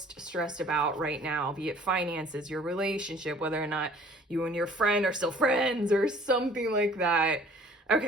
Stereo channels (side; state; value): both; normal; correlation 0.53